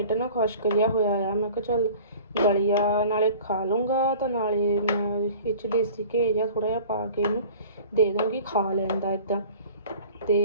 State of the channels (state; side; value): inverted; both; correlation -0.44